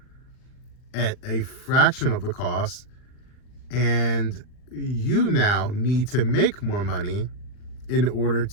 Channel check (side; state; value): right; late; 39 ms